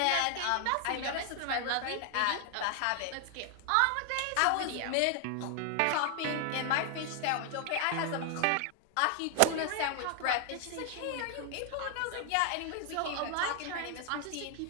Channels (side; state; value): both; different; correlation 0.00